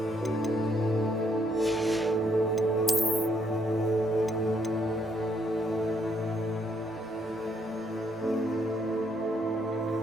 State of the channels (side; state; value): both; normal; correlation 0.72